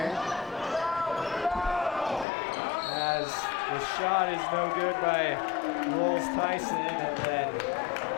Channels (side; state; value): right; drops out; at 2.2 s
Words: As the shot is no good by Rolls Tyson, and then